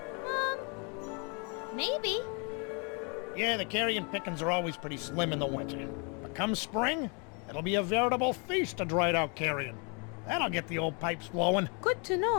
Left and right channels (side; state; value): right; quieter; 34.6 dB